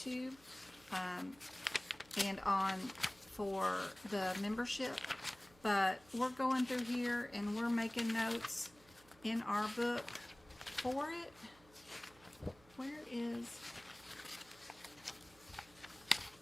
and on for the membership. But we're going through here and we're making notes in our book for it. Where is...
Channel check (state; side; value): noise; right; hum, 27 dB below the sound